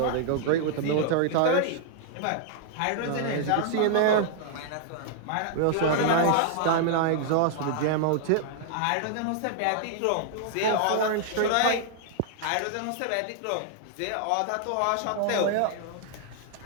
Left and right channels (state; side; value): different; both; correlation -0.01